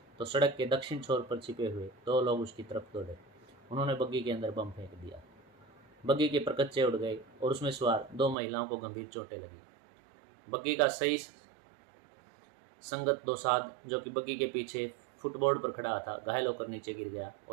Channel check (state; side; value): drops out; left; at 8.3 s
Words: तो सड़क के दक्षिण छोर पर छिपे हुए 2 लोग उसकी तरफ दौड़े। उन्होंने बग्गी के अंदर बम फेंक दिया। बग्गी के परकच्चे उड़ गए और उसमें सवार 2 महिलाओं को गंभीर चोटें लगी। बग्गी का सही संगत दोसाद, जो कि बग्गी के पीछे फुटबोर्ड पर खड़ा था, घायल होकर नीचे गिर गया